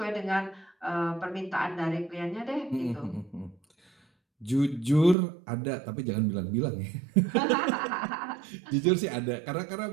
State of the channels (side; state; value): left; drops out; at 5.2 s